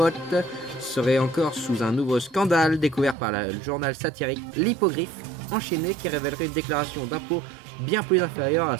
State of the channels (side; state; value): left; drops out; at 3.2 s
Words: serait encore sous un nouveau scandale découvert par le journal satirique L'Hippogriffe, enchaîné, qui révélerait une déclaration d'impôt bien plus inférieure à